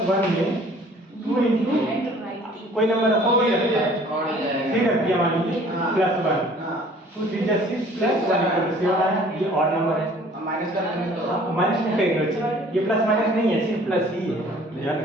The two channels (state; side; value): normal; both; correlation 0.53